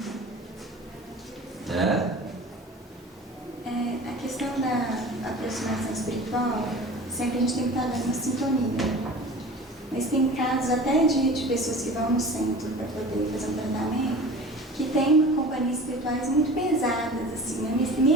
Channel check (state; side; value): normal; both; correlation 0.39